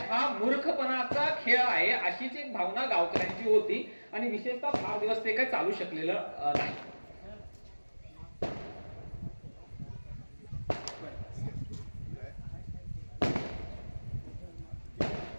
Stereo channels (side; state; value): both; inverted; correlation -1.00